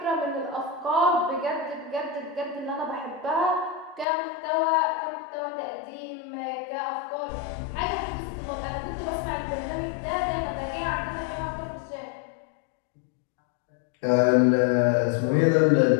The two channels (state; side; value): drops out; right; at 4.0 s